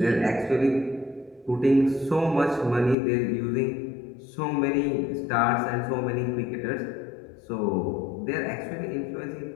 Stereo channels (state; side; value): drops out; right; at 3.0 s